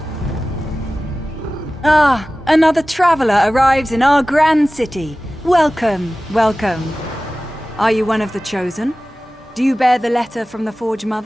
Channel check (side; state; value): both; normal; correlation 0.96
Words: Ah, another traveler arrives in our grand city. Welcome, welcome. Are you one of the chosen? Do you bear the letter from the Forge